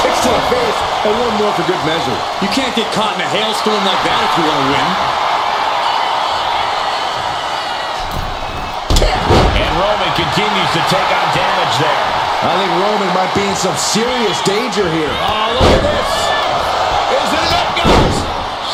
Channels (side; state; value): both; identical; correlation 1.00